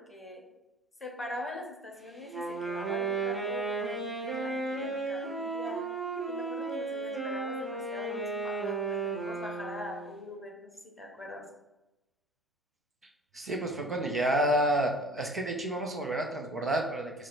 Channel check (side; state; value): both; normal; correlation 0.44